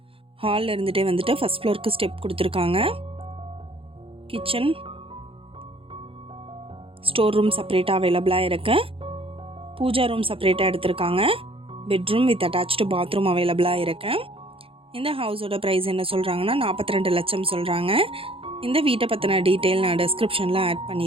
இருந்துகிட்டே வந்துட்டு ஃபஸ்ட் ஃப்ளோருக்கு ஸ்டெப் கொடுத்துருக்காங்க. கிச்சன், ஸ்டோர் ரூம் செப்பரேட்டாக அவைலபிளாக இருக்குது. பூஜா ரூம் செப்பரேட்டாக எடுத்திருக்காங்க. பெட்ரூம் வித் அட்டாச்டு பாத்ரூம் அவைலபிளாக இருக்குது. இந்த ஹவுஸோட ப்ரைஸ் என்ன சொல்கிறாங்கன்னா 42 லட்சம் சொல்கிறாங்க. இந்த வீட்டை பற்றின டீட்டெயில் நான் டிஸ்கிரிப்ஷனில் ஆட்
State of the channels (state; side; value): late; left; 0.27 ms